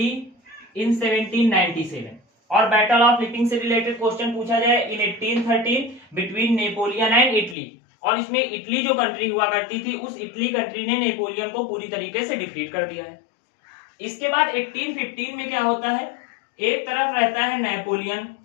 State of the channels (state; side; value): drops out; right; at 7.6 s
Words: इन 1797। और बैटल ऑफ लिपिंग से रिलेटेड क्वेश्चन पूछा जाए इन 1813 बिटवीन नेपोलियन एंड इटली, और इसमें इटली जो कंट्री हुआ करती थी, उस इटली कंट्री ने नेपोलियन को पूरी तरीके से डिफीट कर दिया है। इसके बाद 1815 में क्या होता है, एक तरफ रहता है नेपोलियन,